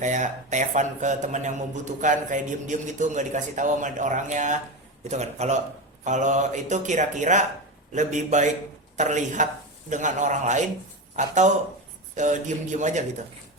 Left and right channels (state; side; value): normal; both; correlation 0.19